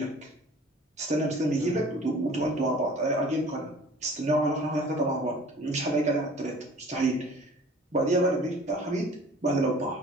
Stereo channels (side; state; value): both; normal; correlation 0.47